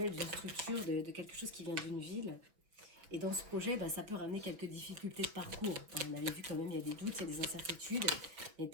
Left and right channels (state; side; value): late; left; 5.8 ms